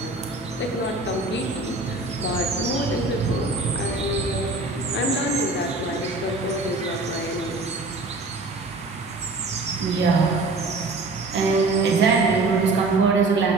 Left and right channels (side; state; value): left; quieter; 3.2 dB